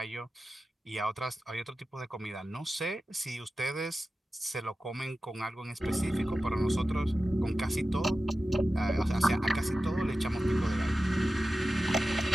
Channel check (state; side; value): normal; both; correlation 0.93